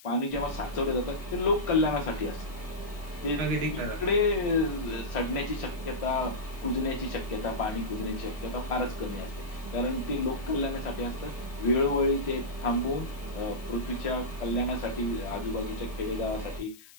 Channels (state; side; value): noise; left; hiss, 22 dB below the sound